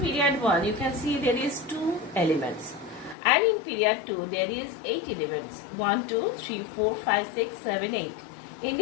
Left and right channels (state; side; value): drops out; right; at 3.2 s